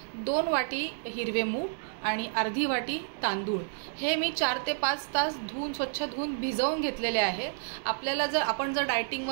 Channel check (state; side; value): silent; left; digital silence